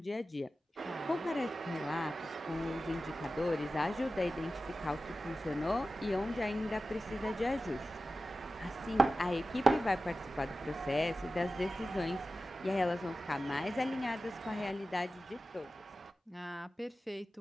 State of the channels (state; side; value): normal; both; correlation 0.94